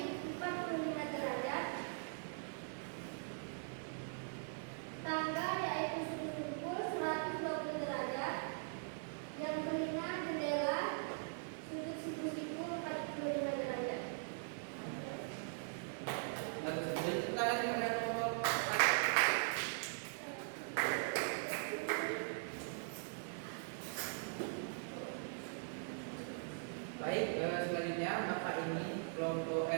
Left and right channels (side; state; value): left; silent; digital silence